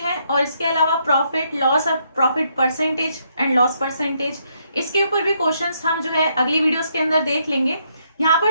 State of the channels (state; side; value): inverted; both; correlation -0.74